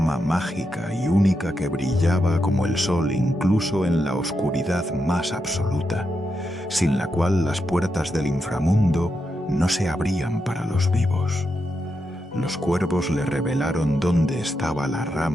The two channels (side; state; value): both; normal; correlation 0.85